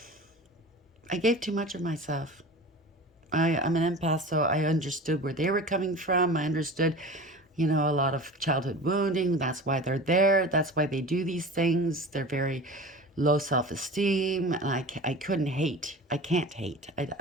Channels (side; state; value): both; normal; correlation 0.36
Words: gave too much of myself. I'm an empath, so I understood where they were coming from. I understood, you know, a lot of childhood wounding. That's why they're there. That's why they do these things. They're very low self-esteem. And I couldn't hate. I can't hate.